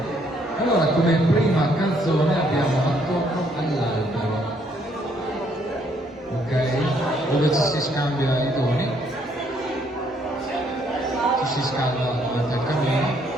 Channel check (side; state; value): both; normal; correlation 0.68